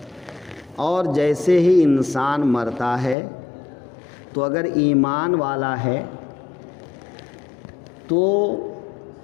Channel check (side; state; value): right; drops out; at 3.2 s